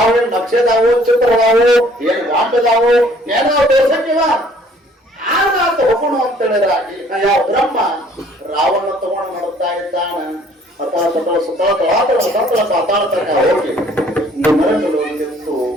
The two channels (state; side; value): normal; both; correlation 0.58